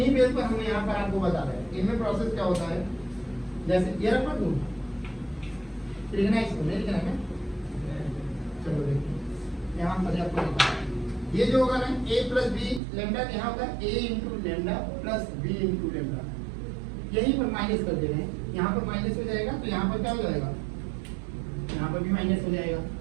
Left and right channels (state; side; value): drops out; left; at 12.8 s